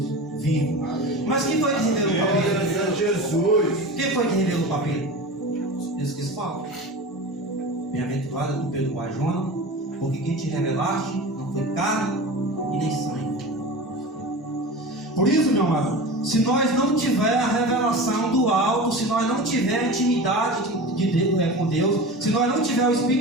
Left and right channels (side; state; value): both; normal; correlation 0.31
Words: vivo. Mas quem foi que revelou para Pedro? Jesus. Quem foi que revelou para Pedro? Eles que falam: bem-aventurado tu, Pedro Bajona, porque quem te revelaste não foi carne e nem sangue. Por isso, meu amado, se nós não tiver a revelação do alto, se nós não tiver a intimidade com Deus, se nós não tiver o